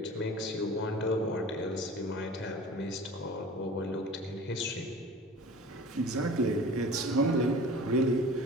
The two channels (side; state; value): both; normal; correlation 0.40